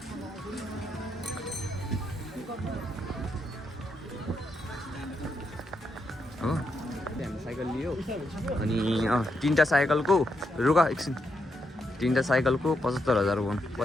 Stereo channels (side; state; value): both; normal; correlation 0.81